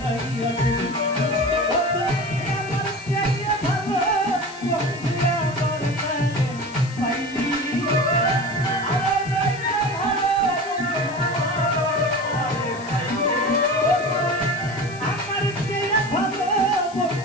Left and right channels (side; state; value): left; noise; hiss, 20 dB below the sound